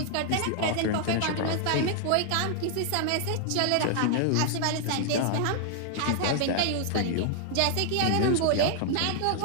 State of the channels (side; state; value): both; different; correlation 0.00